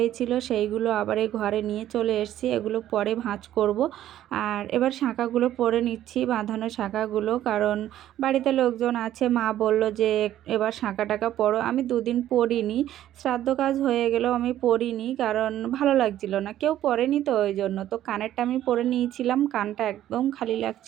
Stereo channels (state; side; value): quieter; left; 12.4 dB